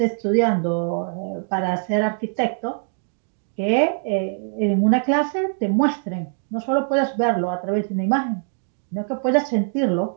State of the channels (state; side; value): silent; left; 60 dB below the other